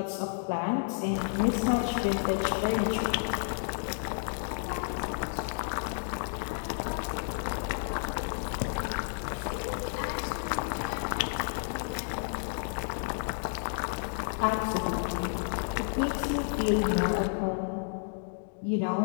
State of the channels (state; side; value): silent; right; digital silence